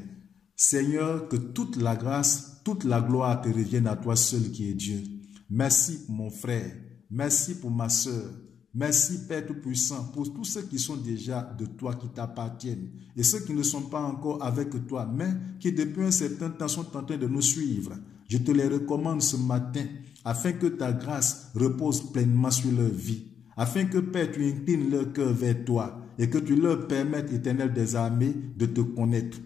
Seigneur, que toute la grâce, toute la gloire te revienne à toi seul qui est Dieu. Merci pour mon frère, merci pour ma soeur. Merci Père Tout-Puissant pour tous ceux qui sont déjà de toi, qui t'appartiennent, et ceux qui ne sont pas encore avec toi, mais qui depuis un certain temps sont en train de nous suivre. Je te les recommande ce matin, afin que ta grâce repose pleinement sur leur vie, afin que Père, tu inclines leur cœur vers toi, et que tu leur permettes, Éternel des armées, de te connaître.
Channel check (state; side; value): quieter; right; 7.7 dB